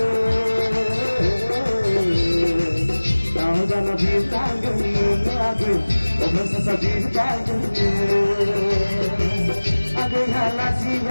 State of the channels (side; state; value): both; inverted; correlation -1.00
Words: Tahu sana bir langani age Open sasa bir baik Agaya